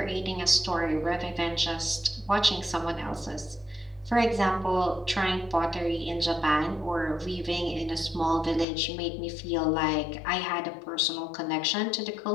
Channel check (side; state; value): right; drops out; at 8.7 s